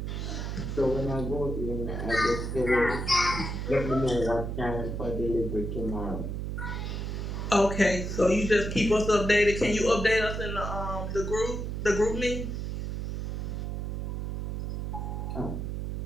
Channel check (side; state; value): right; noise; hum, 3 dB below the sound